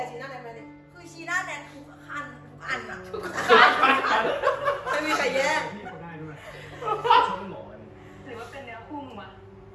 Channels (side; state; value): both; identical; correlation 1.00